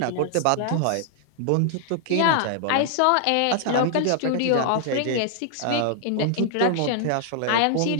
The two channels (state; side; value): different; both; correlation 0.00